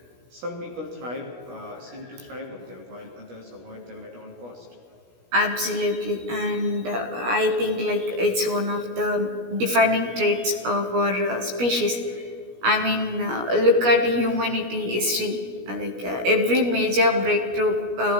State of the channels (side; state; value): left; late; 17 ms